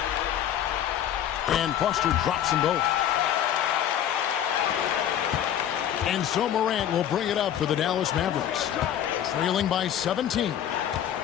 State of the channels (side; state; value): right; quieter; 10.3 dB